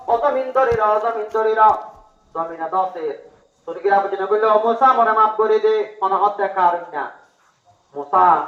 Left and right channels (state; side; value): identical; both; correlation 1.00